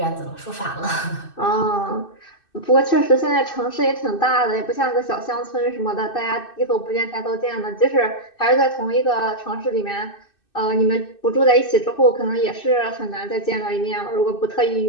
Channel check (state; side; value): late; right; 2.6 ms